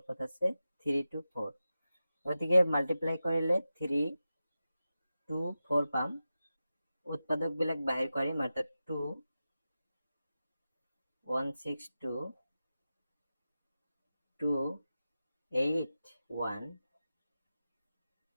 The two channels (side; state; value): both; inverted; correlation -0.93